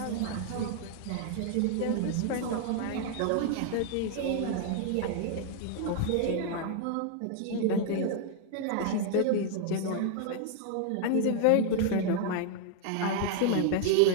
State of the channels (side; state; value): both; different; correlation 0.00